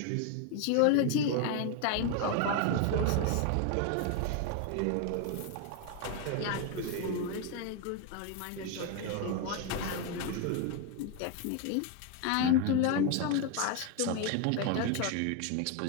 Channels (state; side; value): different; both; correlation 0.01